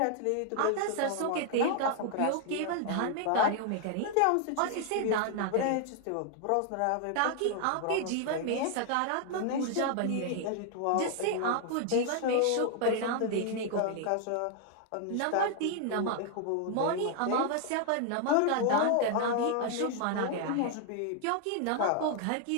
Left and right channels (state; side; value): different; both; correlation 0.00